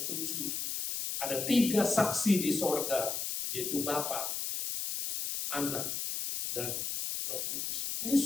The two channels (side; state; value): left; noise; hiss, 2 dB below the sound